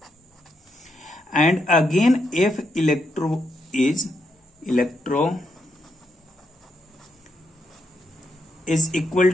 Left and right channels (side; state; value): both; normal; correlation 0.80